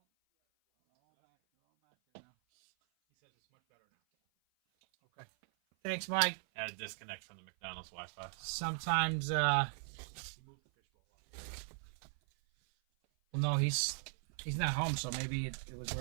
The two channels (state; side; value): silent; left; 52 dB below the other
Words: He says it's much better now. Okay. Thanks, Mike. Had a disconnect from the McDonald's Wi-Fi. Sometimes, He moved the fishbowl up. well, no, he's not home, so maybe it was